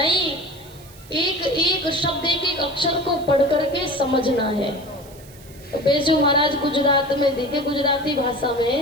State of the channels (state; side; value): noise; right; hiss, 23 dB below the sound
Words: एक एक शब्द एक एक अक्षर को पढ़ करके समझना है। तो पेशू महाराज गुजरात में देखे गुजराती भाषा